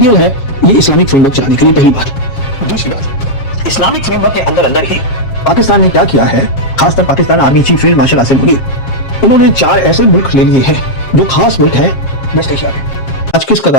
है ये इस्लामिक फ्रेमवर्क चलाने के लिए। पहली बात। दूसरी बात, इस्लामिक फ्रेमवर्क के अंदर अंदर ही पाकिस्तान ने क्या किया है, खासकर Pakistan army chief field marshal Asim Munir, उन्होंने 4 ऐसे मुल्क ले लिए हैं जो खास मुल्क हैं वेस्ट एशिया में। आज किस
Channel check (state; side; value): late; right; 7.4 ms